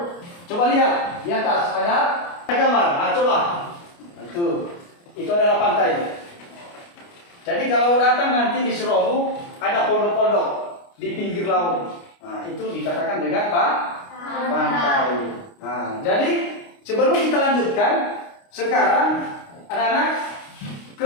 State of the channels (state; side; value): late; right; 29 ms